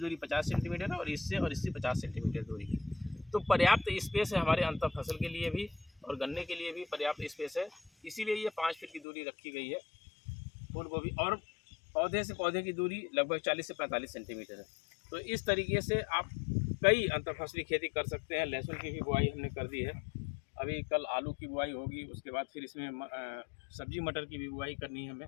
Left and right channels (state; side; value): drops out; right; at 9.1 s